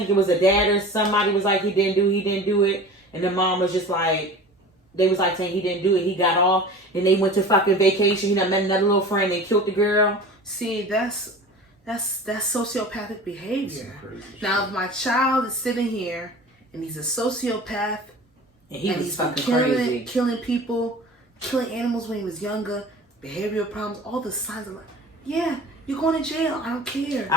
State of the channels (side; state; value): both; normal; correlation 0.38